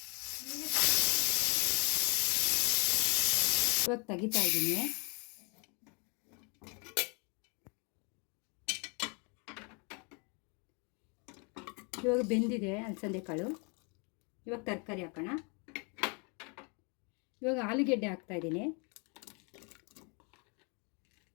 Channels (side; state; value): right; quieter; 34.1 dB